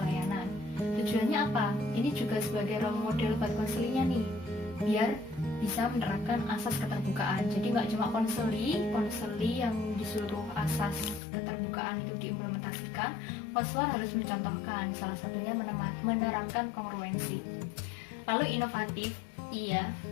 Tujuannya apa? Ini juga sebagai role model buat konselingnya nih, biar bisa menerapkan asas keterbukaan. Jadi nggak cuma konseli yang disuruh asas keterbukaan itu diimplementasikan, konselor harus mencontohkan, salah satunya menerapkan kongruensi. Lalu inovatif, iya,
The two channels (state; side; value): drops out; right; at 11.2 s